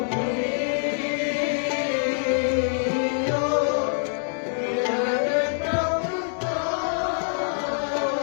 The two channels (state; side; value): silent; right; 62 dB below the other